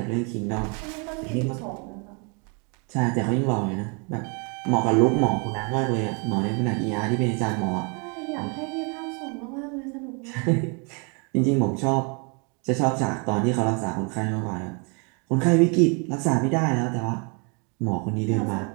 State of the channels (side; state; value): left; quieter; 34.6 dB